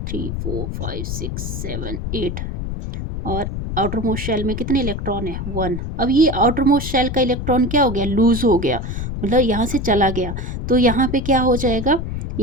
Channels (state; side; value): noise; left; rumble, 5 dB below the sound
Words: 3 4 5 6 7 8, और आउटर मोस्ट शेल में कितने इलेक्ट्रॉन है 1। अब ये आउटर मोस्ट शेल का इलेक्ट्रॉन क्या हो गया, लूज हो गया, मतलब यहाँ से चला गया। तो यहाँ पे क्या हो जाएगा,